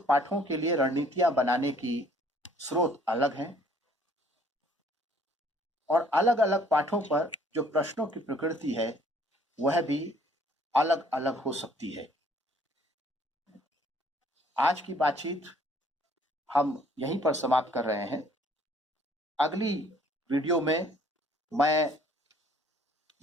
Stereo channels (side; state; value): both; normal; correlation 0.60